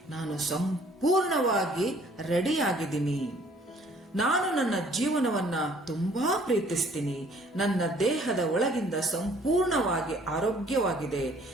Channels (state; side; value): normal; both; correlation 0.58